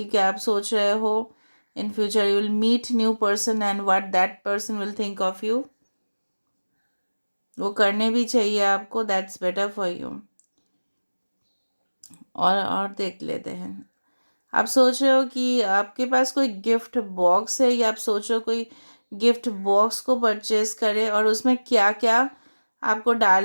आप सोच रहे हो in future you will meet new person and what that person will think of you. वो करने भी चाहिए आपको, दैट्स बेटर फॉर यू। और देख लेते हैं, आप सोच रहे हो कि आपके पास कोई गिफ्ट बॉक्स है, या आप सोच रहे हो कोई गिफ्ट बॉक्स को परचेज करे और उसमें क्या क्या आपको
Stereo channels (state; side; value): inverted; both; correlation -1.00